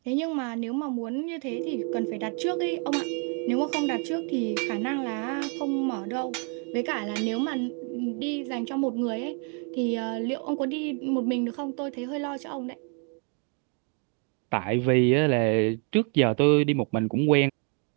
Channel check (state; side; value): quieter; left; 39.4 dB